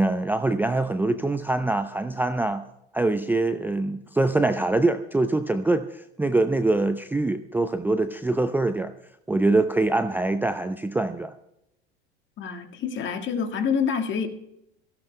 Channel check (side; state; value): both; normal; correlation 0.84